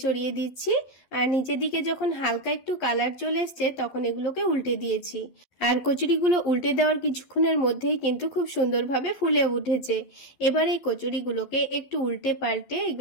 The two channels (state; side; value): late; right; 12 ms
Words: ছড়িয়ে দিচ্ছি, আর নিচের দিকে যখন হালকা একটু কালার চলে এসছে তখন এগুলোকে উল্টে দিয়েছি। আর কচুরিগুলো উল্টে দেওয়ার কিছুক্ষণের মধ্যেই কিন্তু খুব সুন্দরভাবে ফুলে উঠেছে। এবার এই কচুরিগুলোকে একটু উল্টে পাল্টে